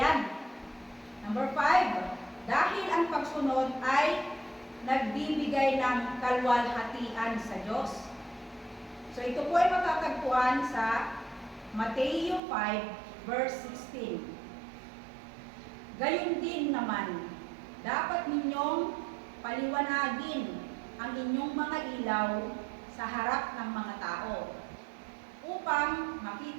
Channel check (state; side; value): drops out; left; at 12.4 s